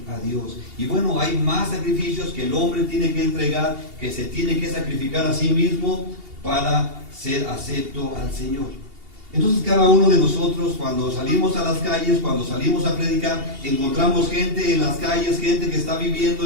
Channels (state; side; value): late; left; 2.8 ms